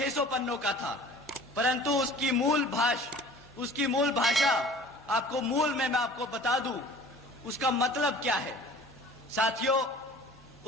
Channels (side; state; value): both; normal; correlation 0.46